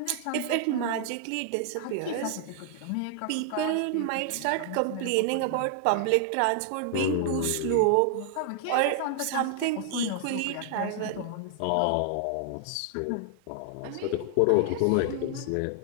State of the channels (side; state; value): both; different; correlation 0.00